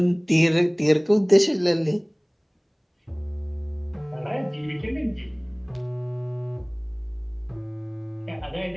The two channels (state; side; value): identical; both; correlation 1.00